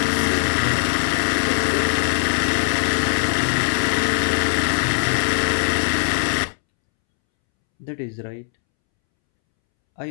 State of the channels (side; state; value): right; silent; 66 dB below the other